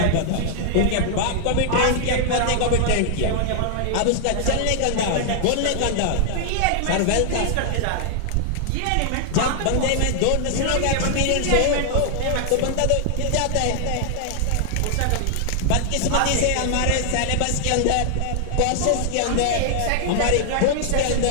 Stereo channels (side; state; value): both; different; correlation 0.00